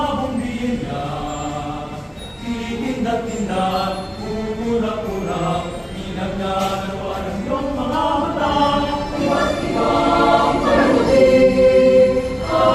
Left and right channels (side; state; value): both; identical; correlation 1.00